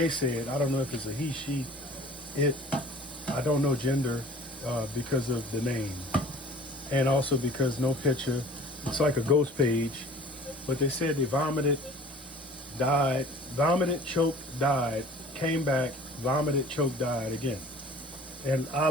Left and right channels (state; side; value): normal; both; correlation 0.47